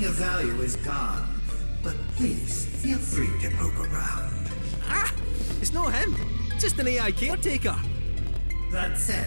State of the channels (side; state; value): both; inverted; correlation -1.00